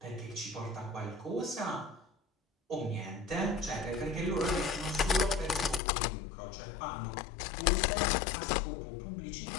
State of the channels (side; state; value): right; drops out; at 5.8 s